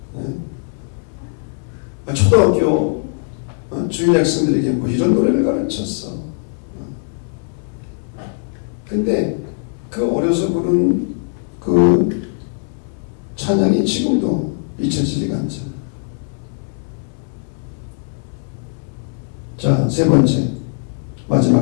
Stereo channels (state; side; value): silent; right; 64 dB below the other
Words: 초등학교 주일 학생들에게 뭐 이런 노래를 가르쳤어. 근데 그 어려서 부른 그 찬양이 지금도 잊혀지지가 않잖아. 자, 세 번째,